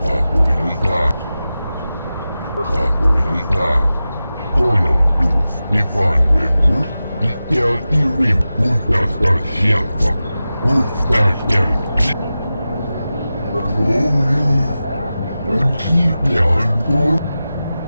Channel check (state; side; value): inverted; both; correlation -0.94